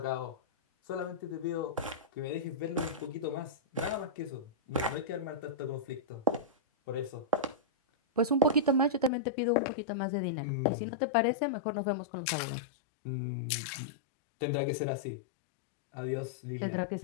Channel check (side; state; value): right; drops out; at 9.1 s